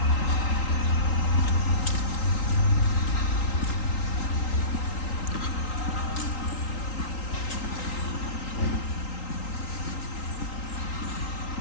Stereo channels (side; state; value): right; late; 3.8 ms